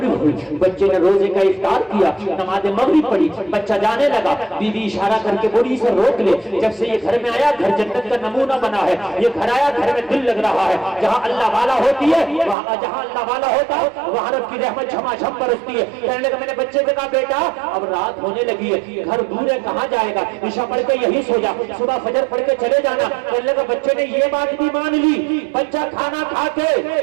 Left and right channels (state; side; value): drops out; left; at 12.6 s